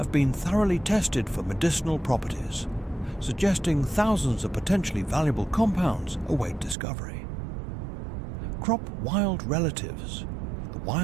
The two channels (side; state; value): left; drops out; at 6.8 s